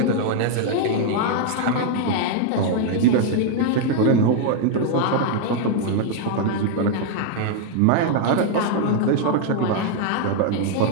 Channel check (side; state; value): both; different; correlation 0.00